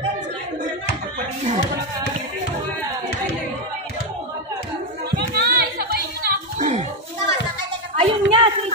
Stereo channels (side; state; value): both; normal; correlation 0.07